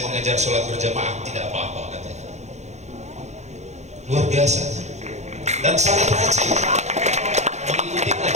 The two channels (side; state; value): left; late; 0.33 ms